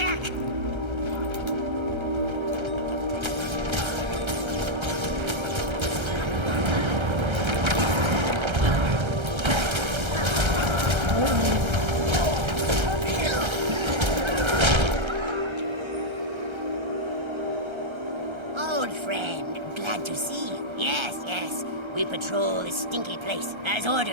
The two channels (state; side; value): late; left; 1.3 ms